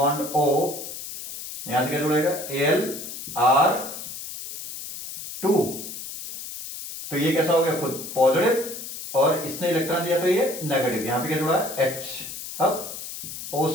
O, यहां से क्या जुड़ेगा एल आर टू, तो ये कैसा हो गया खुद पॉजिटिव, और इसने इलेक्ट्रॉन दिया तो ये नेगेटिव, यहां पे क्या जुड़ा है H, अब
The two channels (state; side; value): noise; left; hiss, 9 dB below the sound